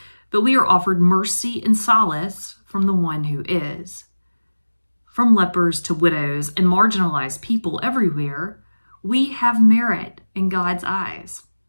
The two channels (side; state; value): both; inverted; correlation -1.00